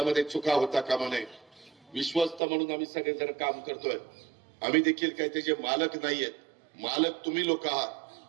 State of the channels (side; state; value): left; drops out; at 2.4 s